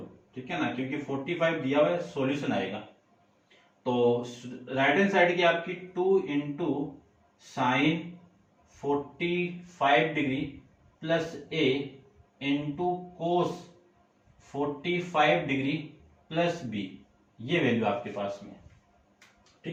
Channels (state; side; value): identical; both; correlation 1.00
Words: ठीक है ना, क्योंकि 45 दिया हुआ है, सॉल्यूशन आएगा। तो राइट हैंड साइड की आपकी 2 into sine 45 degree plus A into cos 45 degree plus B, ये वैल्यू आपके पास में।